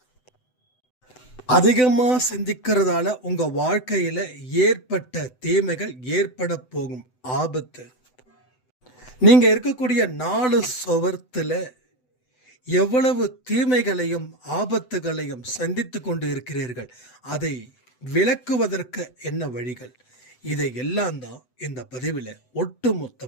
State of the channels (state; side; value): late; right; 7.9 ms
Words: அதிகமா சிந்திக்கிறதால உங்க வாழ்க்கையில ஏற்பட்ட தீமைகள், ஏற்பட போகும் ஆபத்து, நீங்க இருக்கக்கூடிய 4 சுவர்த்துல எவ்வளவு தீமைகளையும் ஆபத்துகளையும் சந்தித்து கொண்டு இருக்கிறீர்கள், அதை விளக்குவதற்கு என்ன வழிகள், இதை எல்லாம் தான் இந்த பதிவில் ஒட்டு